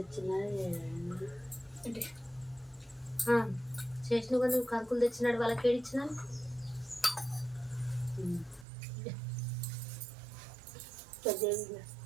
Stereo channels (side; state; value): left; drops out; at 8.7 s